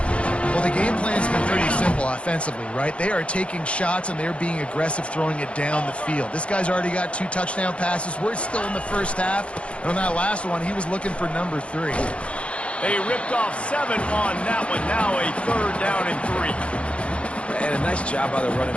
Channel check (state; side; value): late; right; 0.061 ms